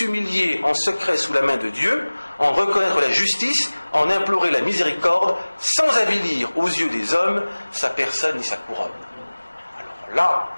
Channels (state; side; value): inverted; both; correlation -1.00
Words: en secret sous la main de Dieu, en reconnaître la justice, en implorer la miséricorde, sans avilir aux yeux des hommes sa personne et sa couronne. Alors là,